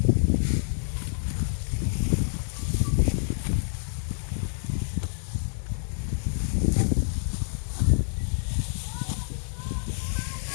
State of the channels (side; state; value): right; silent; 60 dB below the other